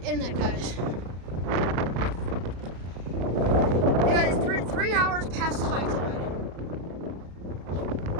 that, guys. Yeah, guys, 3 hours past high tide.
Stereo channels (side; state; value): left; late; 34 ms